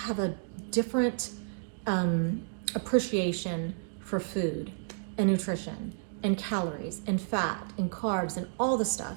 a different appreciation for food and nutrition and calories and fat and carbs and all the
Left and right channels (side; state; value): left; silent; digital silence